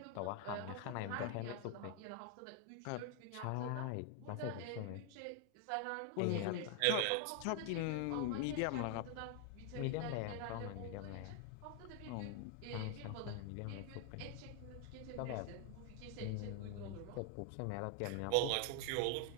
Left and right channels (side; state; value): both; different; correlation 0.00